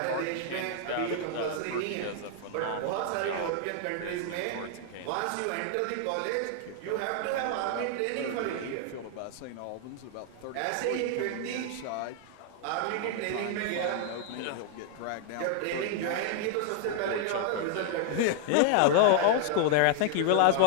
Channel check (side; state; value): both; different; correlation 0.00